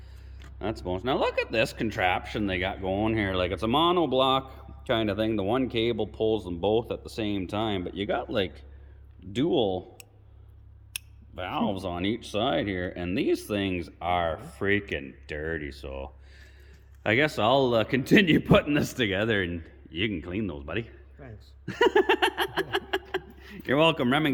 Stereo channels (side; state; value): both; identical; correlation 1.00